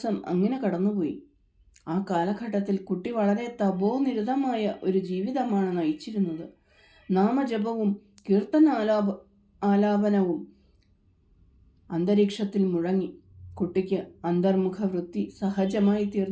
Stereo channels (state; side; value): identical; both; correlation 1.00